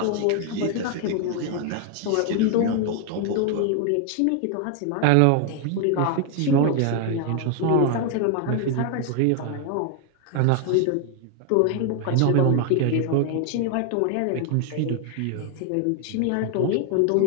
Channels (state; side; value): different; both; correlation 0.00